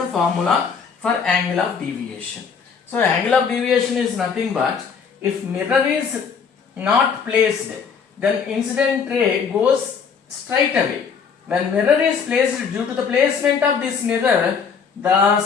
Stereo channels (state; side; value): quieter; right; 6.2 dB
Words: formula for angle of deviation. So angle of deviation is nothing but, if mirror is not placed, then incident ray goes straight away. When mirror is placed, due to the placement of this mirror,